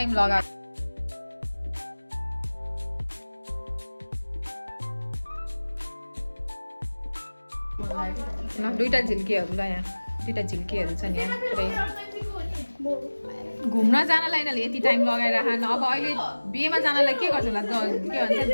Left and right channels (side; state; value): both; inverted; correlation -1.00